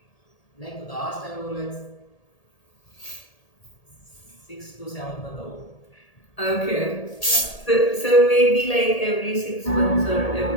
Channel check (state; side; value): late; right; 1.8 ms